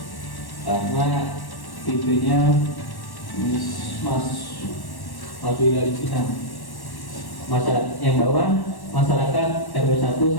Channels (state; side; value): late; right; 1.1 ms